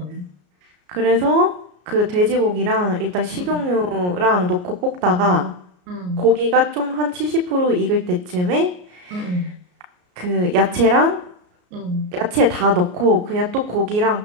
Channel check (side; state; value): left; late; 33 ms